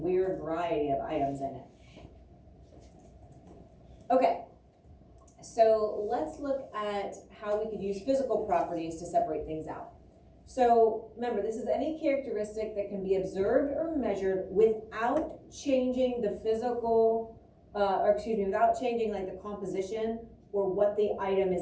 variety of items in it. Okay, so let's look at how we could use physical properties to separate things out. So remember, this is any characteristic that can be observed or measured without changing the physical, without changing like the composition or what the item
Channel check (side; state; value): both; identical; correlation 1.00